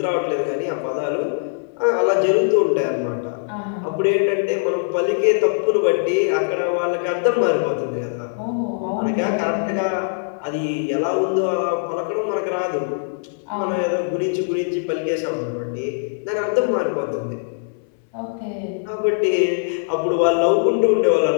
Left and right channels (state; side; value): silent; right; 64 dB below the other